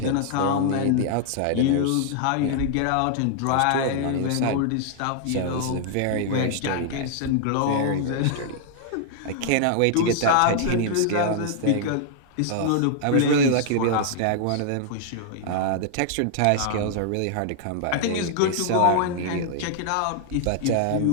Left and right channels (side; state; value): both; different; correlation -0.01